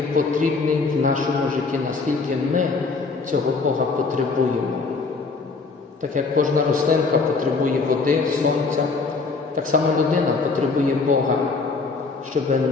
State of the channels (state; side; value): quieter; right; 4.3 dB